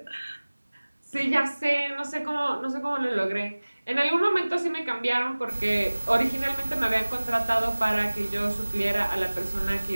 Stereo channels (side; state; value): both; inverted; correlation -1.00